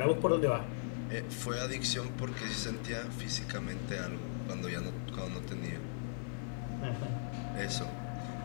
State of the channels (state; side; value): silent; right; 52 dB below the other